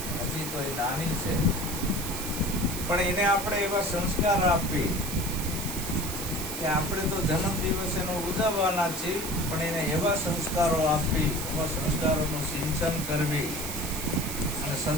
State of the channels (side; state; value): right; noise; hiss, 6 dB below the sound